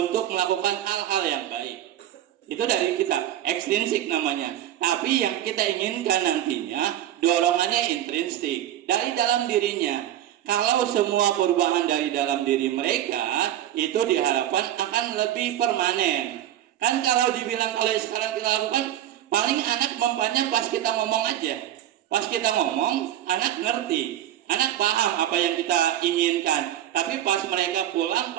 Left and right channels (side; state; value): left; quieter; 12.1 dB